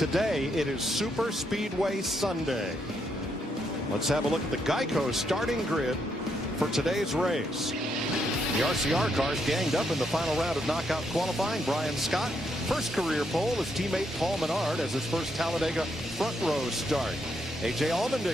it is Super Speedway Sunday. Let's have a look at the Geico starting grid for today's race. The RCR cars ganged up in the final round of knockout qualifying. Brian Scott, first career pole. His teammate Paul Menard has his first Talladega front row start. A.J.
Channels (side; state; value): both; normal; correlation 0.77